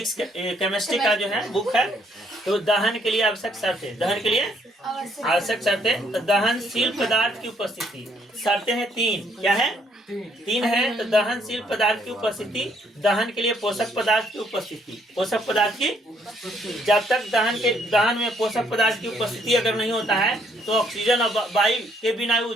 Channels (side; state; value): both; normal; correlation 0.69